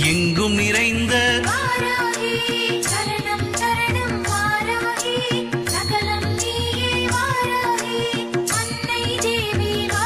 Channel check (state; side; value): identical; both; correlation 1.00